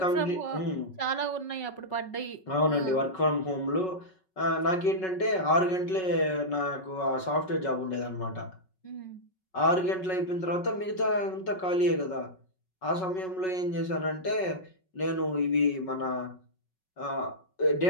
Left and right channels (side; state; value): right; late; 5.4 ms